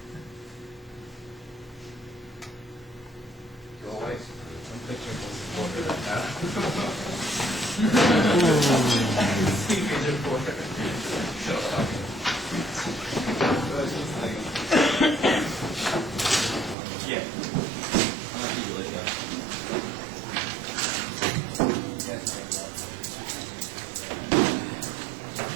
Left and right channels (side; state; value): left; drops out; at 16.8 s